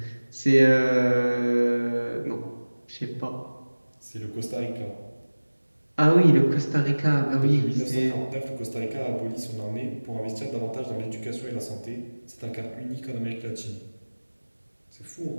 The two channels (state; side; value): inverted; both; correlation -1.00